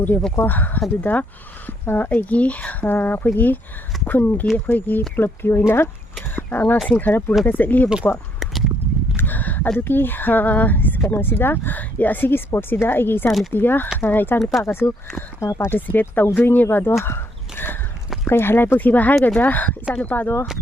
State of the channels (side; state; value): both; normal; correlation 0.71